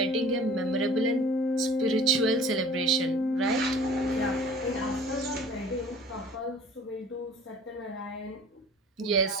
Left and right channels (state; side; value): normal; both; correlation 0.47